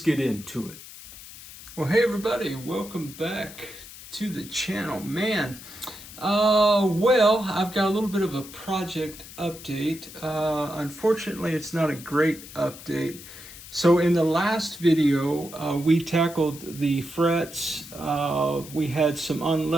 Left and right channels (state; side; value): noise; left; hiss, 16 dB below the sound